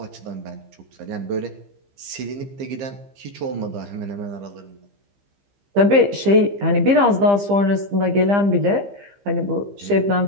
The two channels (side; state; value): left; late; 15 ms